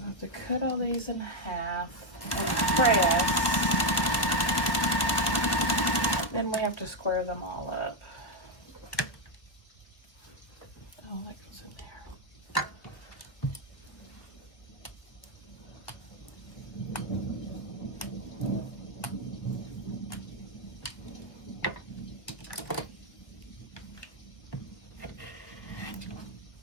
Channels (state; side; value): late; right; 1.4 ms